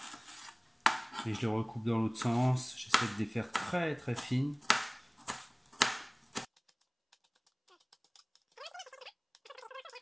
Et je les recoupe dans l'autre sens. J'essaie de les faire très très fines.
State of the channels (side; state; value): both; identical; correlation 1.00